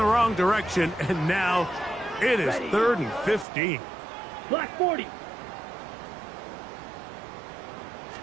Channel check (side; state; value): left; drops out; at 3.5 s